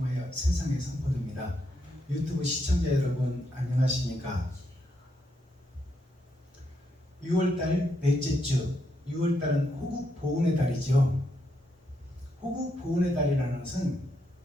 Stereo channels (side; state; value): both; normal; correlation 0.79